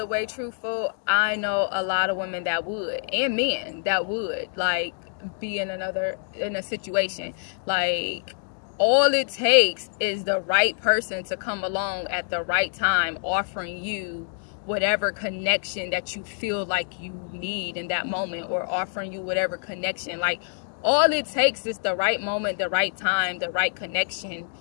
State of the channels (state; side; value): silent; right; digital silence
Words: way truthful, I know a lot of women that would, and men that would, like, be in a situation. Like, all it takes is the right person to come along at the right time, offering you whatever connection that you feel like you need in that moment, or offering you whatever connection. Like, all it takes is the right moment, the right time, the right connection,